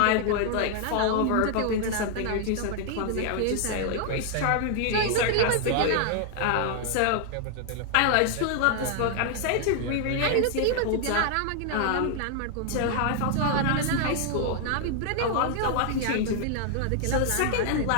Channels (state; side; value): different; both; correlation 0.00